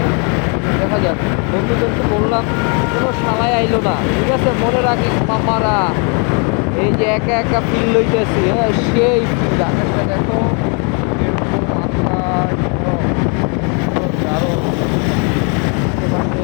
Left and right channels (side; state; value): right; quieter; 36.5 dB